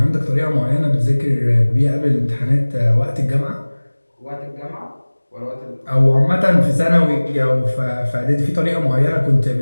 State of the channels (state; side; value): inverted; both; correlation -1.00